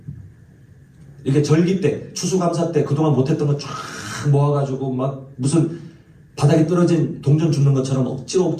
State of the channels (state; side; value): identical; both; correlation 1.00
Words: 이렇게 절기 때, 추수감사 때 그동안 못했던 거 쫙 모아가지고 막 무슨 바닥에 떨어진 동전 줍는 것처럼